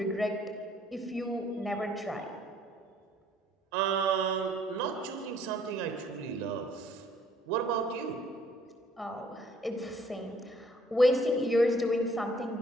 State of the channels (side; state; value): both; normal; correlation 0.61